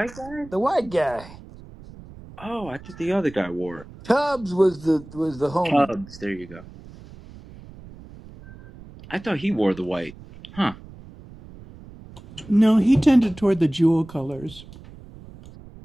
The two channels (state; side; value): noise; right; rumble, 19 dB below the sound